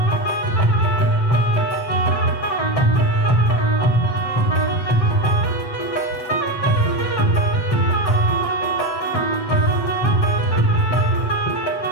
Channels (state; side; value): late; right; 7.7 ms